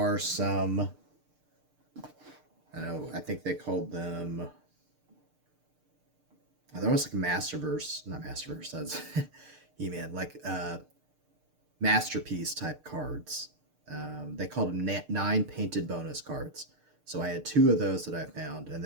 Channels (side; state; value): left; late; 6.7 ms